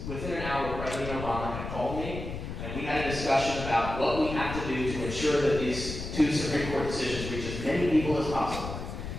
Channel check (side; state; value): left; noise; rumble, 7 dB below the sound